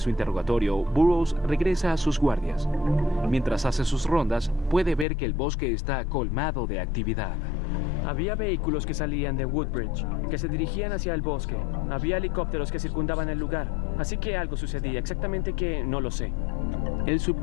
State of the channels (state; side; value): drops out; right; at 5.1 s